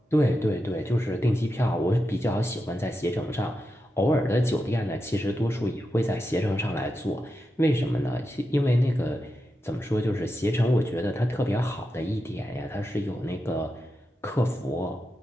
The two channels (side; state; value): both; normal; correlation 0.88